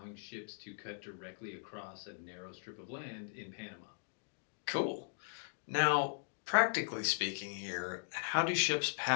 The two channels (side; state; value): right; silent; digital silence